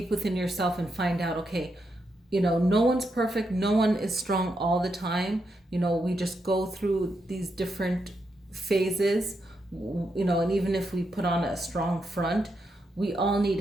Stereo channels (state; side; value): normal; both; correlation 0.83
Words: within yourself and find out, okay, no one's perfect, no one is strong all the time. We just go through these different phases, and even if we put on a strong front, we all need